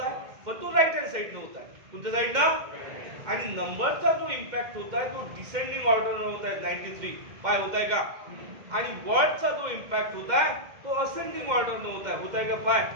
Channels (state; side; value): late; left; 2.1 ms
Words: आहे, पण तो राईट हँड साइडनं होत आहे. कोणत्या साइडनं? आणि नंबरचा जो इम्पॅक्ट होत आहे तो डिसेंडिंग ऑर्डरनं होत आहे. 93 होत आहे का? आणि वर्डचा जो इम्पॅक्ट होत आहे तो असेंडिंग ऑर्डरनं होत आहे. होत आहे का?